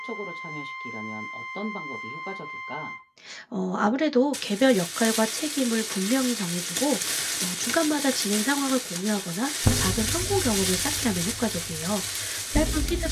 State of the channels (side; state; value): both; identical; correlation 1.00